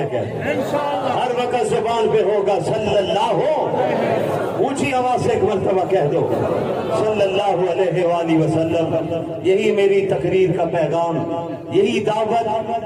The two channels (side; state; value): both; identical; correlation 1.00